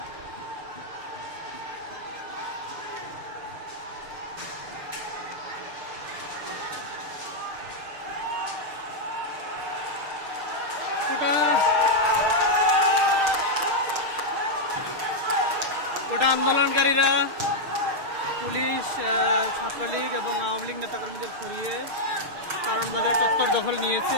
গোটা আন্দোলনকারীরা পুলিশ, ছাত্রলীগ এবং আওয়ামী লীগ নেতাকর্মীদের সরিয়ে কারণ বাজার চত্বর দখল নিয়েছে।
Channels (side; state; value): left; late; 6.5 ms